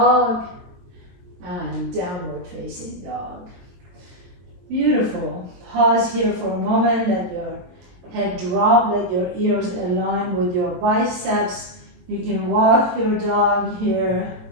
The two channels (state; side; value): late; left; 22 ms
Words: and downward facing dog. Beautiful. Pause here for a moment. Let your head drop. Let your ears align with your biceps. You can walk your dog here,